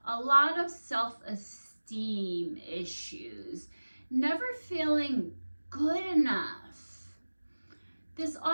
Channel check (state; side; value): inverted; both; correlation -1.00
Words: a lot of self-esteem issues, never feeling good enough. This